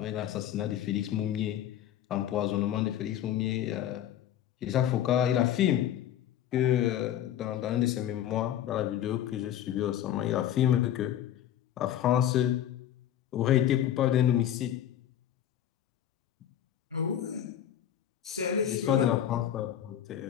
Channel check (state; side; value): quieter; right; 10.9 dB